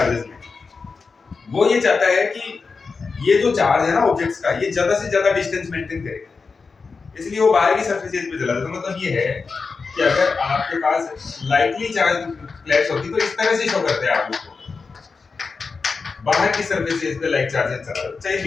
में, वो ये चाहता है कि ये जो चार्ज है ना ऑब्जेक्ट्स का, ये ज्यादा से ज्यादा डिस्टेंस मेंटेन करे, इसलिए वो बाहर की सरफेसेस पे चला जाता है। मतलब ये है कि अगर आपके पास लाइटली चार्ज प्लेट्स होती तो इस तरह से शो करते हैं आप उसको, बाहर की सरफेसेस पे लाइक चार्जेस चला जाता, चाहे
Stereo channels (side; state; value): right; quieter; 4.7 dB